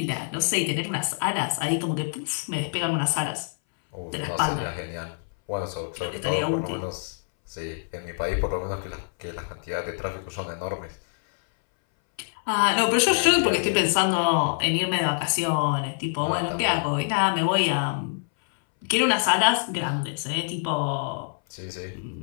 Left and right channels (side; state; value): right; silent; 61 dB below the other